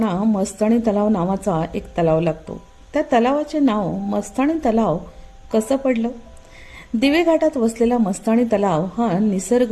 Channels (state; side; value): identical; both; correlation 1.00